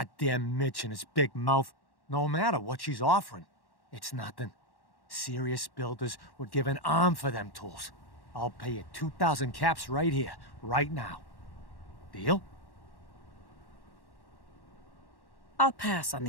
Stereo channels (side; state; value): right; late; 1.1 ms